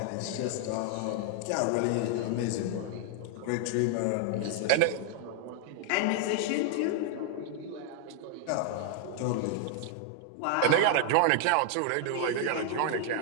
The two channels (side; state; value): both; different; correlation 0.00